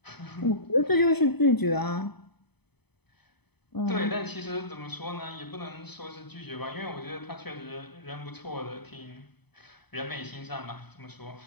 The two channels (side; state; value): right; late; 0.98 ms